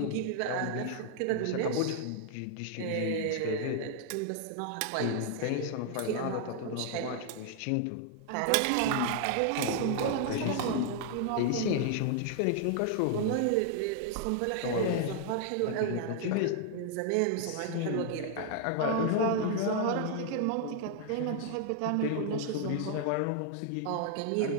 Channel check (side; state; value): both; different; correlation 0.00